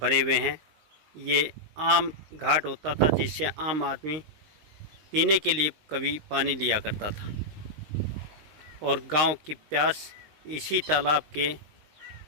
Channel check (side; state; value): left; late; 19 ms